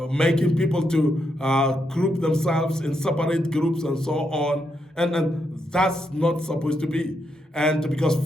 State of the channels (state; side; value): normal; both; correlation 0.81